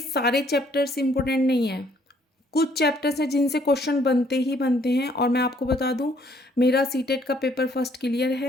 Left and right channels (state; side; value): normal; both; correlation 0.64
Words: चैप्टर्स इंपॉर्टेंट नहीं है। कुछ चैप्टर्स हैं जिनसे क्वेश्चन बनते ही बनते हैं और मैं आपको बता दूं मेरा सीटेट का पेपर फर्स्ट क्लियर